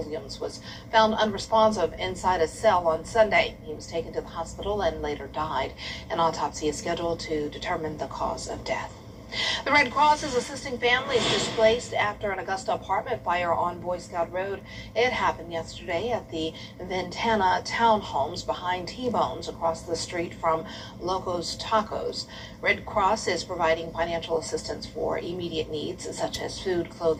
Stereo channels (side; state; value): both; identical; correlation 1.00